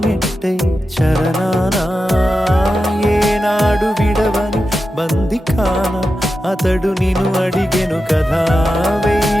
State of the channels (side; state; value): both; normal; correlation 0.91